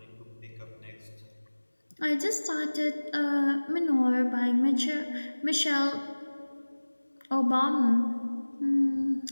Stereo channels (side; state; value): both; inverted; correlation -1.00